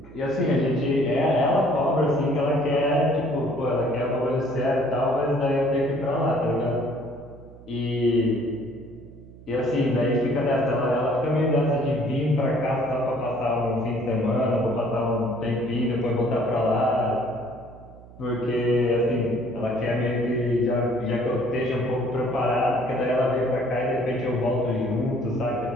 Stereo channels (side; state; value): right; noise; hum, 20 dB below the sound